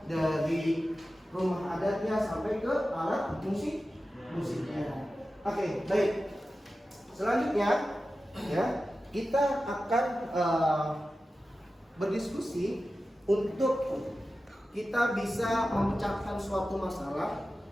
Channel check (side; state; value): both; normal; correlation 0.93